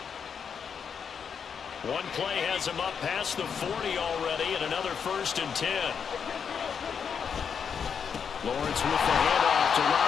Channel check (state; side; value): quieter; right; 6.8 dB